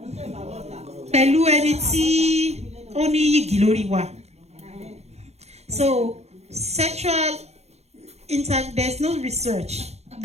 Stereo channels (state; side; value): late; left; 0.31 ms